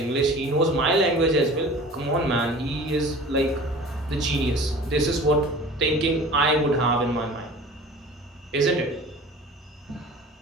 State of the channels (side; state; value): both; normal; correlation 0.42